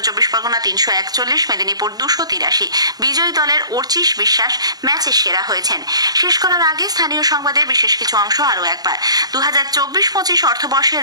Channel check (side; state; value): left; late; 0.19 ms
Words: 24 পরগনা 341, মেদিনীপুর 283। বিজয়ী দলের অর্চিশ বিশ্বাস ম্যাচের সেরা হয়েছেন। শেষ করার আগে স্থানীয় সংবাদের বিশেষ কিছু অংশ আরও একবার। 2024-25 অর্থবর্ষের